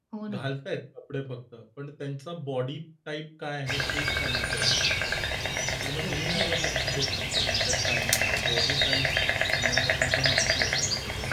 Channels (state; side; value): identical; both; correlation 1.00